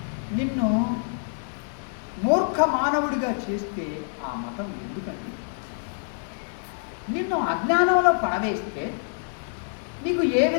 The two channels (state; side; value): silent; right; digital silence